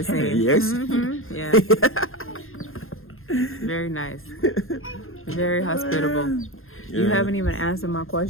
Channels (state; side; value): late; right; 0.61 ms